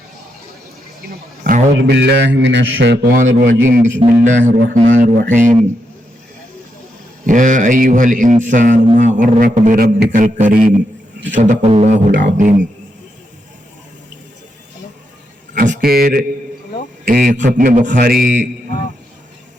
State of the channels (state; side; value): normal; both; correlation 0.82